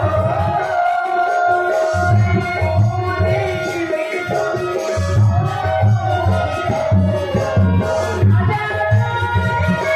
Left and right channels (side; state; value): both; identical; correlation 1.00